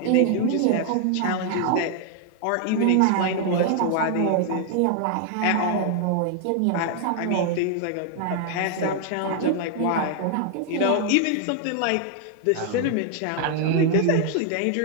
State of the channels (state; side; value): different; both; correlation 0.00